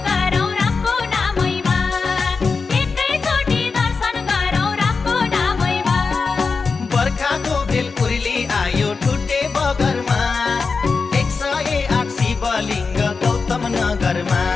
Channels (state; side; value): quieter; right; 4.7 dB